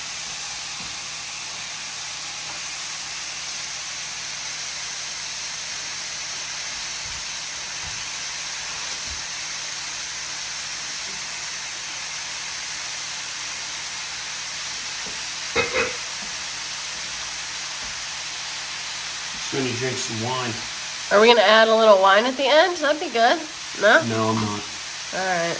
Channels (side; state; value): both; identical; correlation 1.00